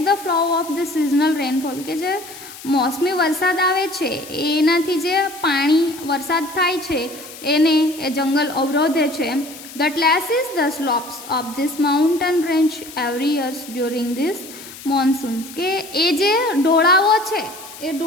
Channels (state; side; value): noise; left; hiss, 16 dB below the sound